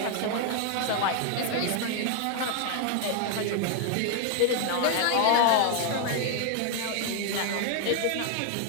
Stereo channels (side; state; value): both; different; correlation 0.00